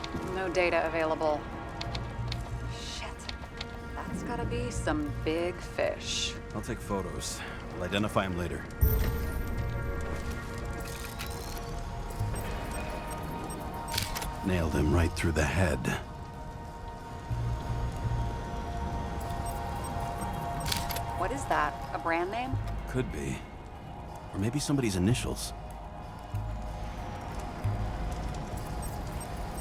No data available. Shit. That's gotta be some big fish. I'll take photos. I'll identify him later. Nailed him right through the head. What is that? A brand name? Could be. Or maybe somebody's initials.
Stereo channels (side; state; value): both; identical; correlation 1.00